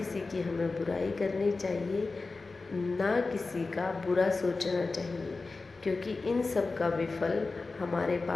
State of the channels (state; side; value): quieter; right; 3.8 dB